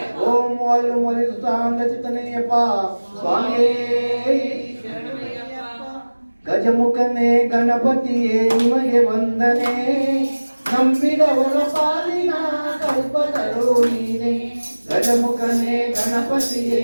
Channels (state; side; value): inverted; both; correlation -1.00